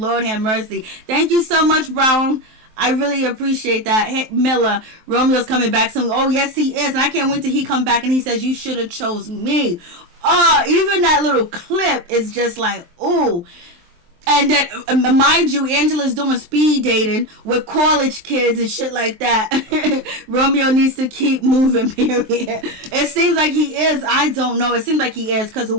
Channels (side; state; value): left; late; 23 ms